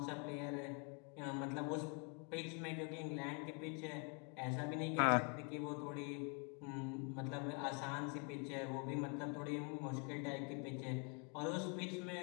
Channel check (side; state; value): right; quieter; 36.7 dB